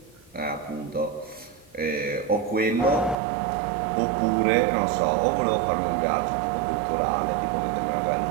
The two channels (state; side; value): drops out; left; at 3.2 s